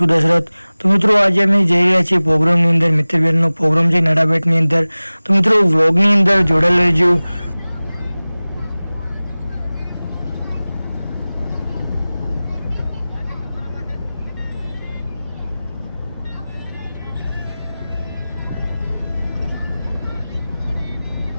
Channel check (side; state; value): both; inverted; correlation -0.99